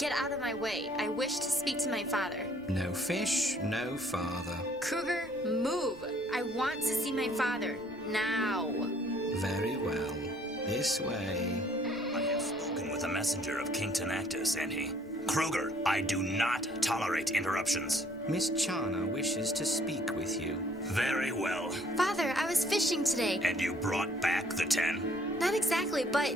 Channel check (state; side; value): normal; both; correlation 0.61